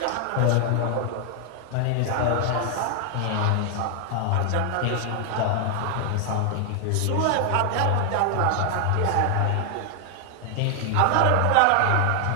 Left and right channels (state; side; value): different; both; correlation 0.00